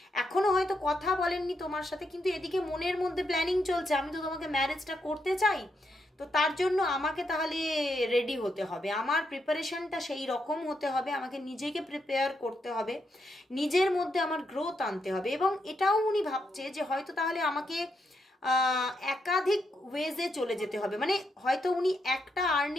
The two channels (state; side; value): normal; both; correlation 0.81